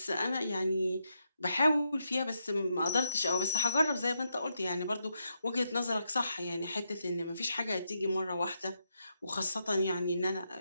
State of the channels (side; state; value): both; inverted; correlation -0.82